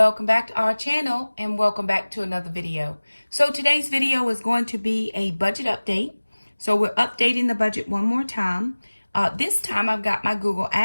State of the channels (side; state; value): both; inverted; correlation -1.00